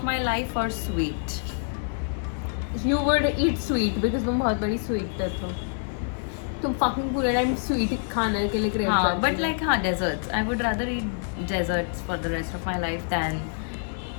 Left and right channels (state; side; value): silent; right; 61 dB below the other